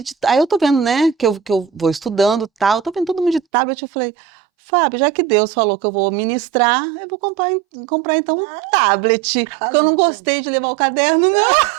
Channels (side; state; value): left; drops out; at 3.4 s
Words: aí eu tô vendo, né, que eu vou estudando e tal, eu tô vendo todo mundo de tablet, eu falei, Fábio, já que Deus falou que eu vou ministrar, eu vou comprar então um Ah, tablet, porque eu não arrasou. gostei de levar o caderno, não.